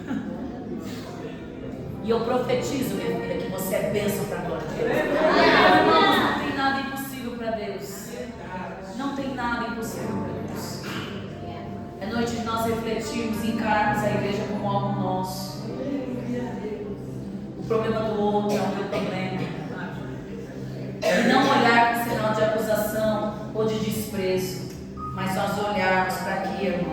E eu profetizo, minha filha, que você é bênção para a glória de Deus. Irmãos, não tem nada impossível para Deus. Não tem nada impossível para Deus. É noite de nós refletirmos e encararmos a igreja como algo nosso. O problema do outro é o meu problema. E não olhar com sinal de acusação ou de desprezo, mas nós olharmos para aqui,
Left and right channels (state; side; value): identical; both; correlation 1.00